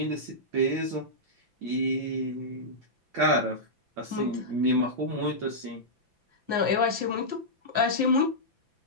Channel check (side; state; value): left; late; 5.9 ms